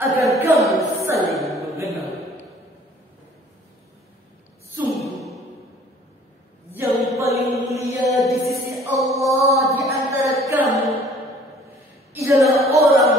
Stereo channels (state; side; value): normal; both; correlation 0.53